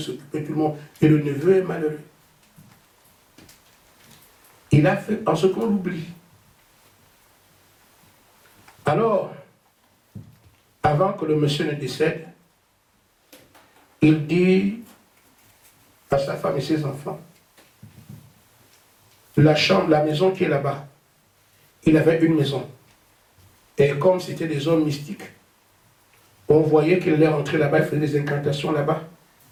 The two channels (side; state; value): both; identical; correlation 1.00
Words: s'occupait de tout le monde. Et le neveu est malheureux. Il a fait en ce qu'on l'oublie. Alors, avant que le monsieur ne décède, il dit à sa femme et ses enfants, la chambre, la maison qui est là-bas, il avait une maison. Et comme c'était des hommes mystiques, on voyait qu'il allait rentrer là-bas, il faisait des incantations là-bas.